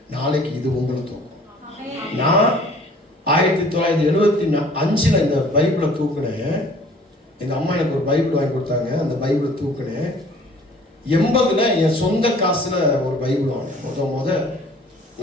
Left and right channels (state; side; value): normal; both; correlation 0.53